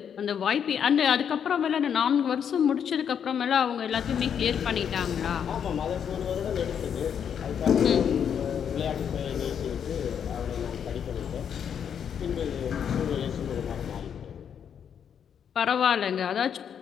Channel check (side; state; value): right; quieter; 8.1 dB